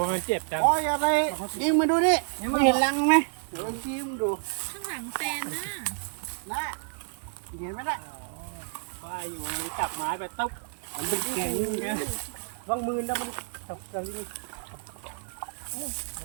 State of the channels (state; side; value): silent; left; 55 dB below the other